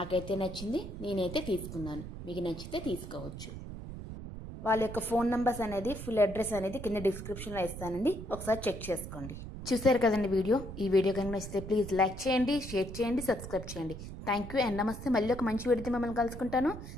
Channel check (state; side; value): noise; right; rumble, 10 dB below the sound